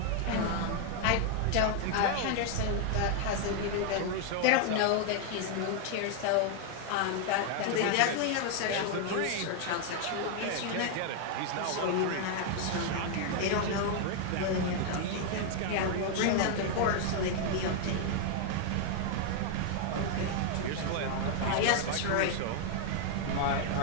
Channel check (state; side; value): different; both; correlation 0.00